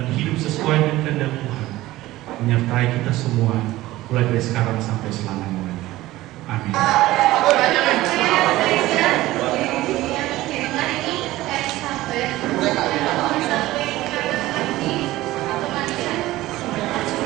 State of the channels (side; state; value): left; quieter; 17.0 dB